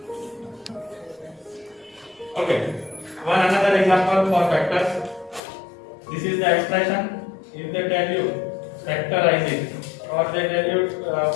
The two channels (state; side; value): drops out; right; at 5.4 s